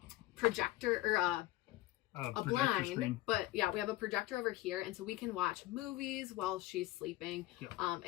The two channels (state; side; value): quieter; right; 17.0 dB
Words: projector or a blind screen. But yeah, we have a projector over here, and so we can watch movies while she's sleeping.